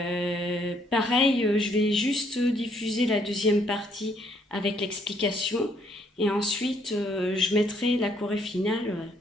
Pareil, je vais juste diffuser la deuxième partie avec l'explication et ensuite je mettrai la choré finale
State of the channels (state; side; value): normal; both; correlation 0.68